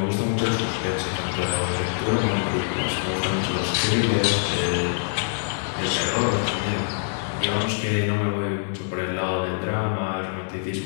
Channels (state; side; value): silent; right; 62 dB below the other